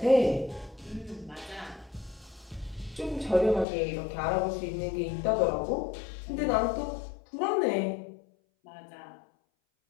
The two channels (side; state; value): right; drops out; at 3.7 s